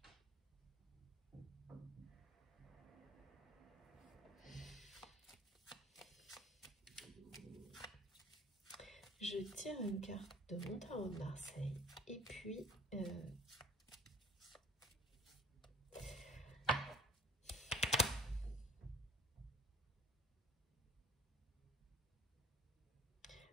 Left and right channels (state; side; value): normal; both; correlation 0.51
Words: Je tire une carte de mon tarot de Marseille et puis